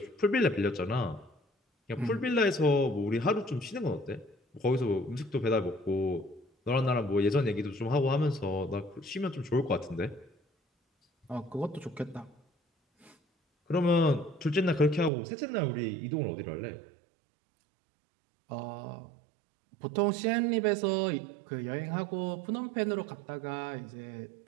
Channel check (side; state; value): left; drops out; at 15.1 s